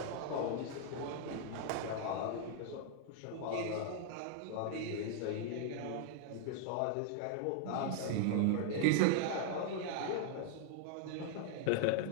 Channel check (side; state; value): both; different; correlation -0.01